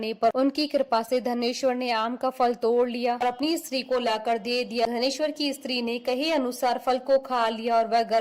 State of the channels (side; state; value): both; identical; correlation 1.00